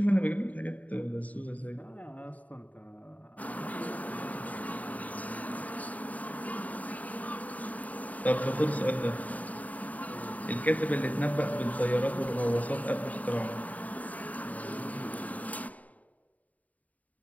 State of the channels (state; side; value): late; right; 0.072 ms